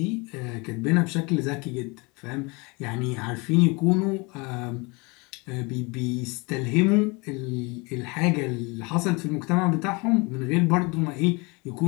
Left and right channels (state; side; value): quieter; right; 27.8 dB